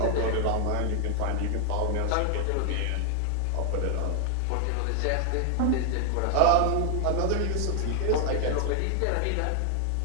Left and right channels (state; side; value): different; both; correlation 0.00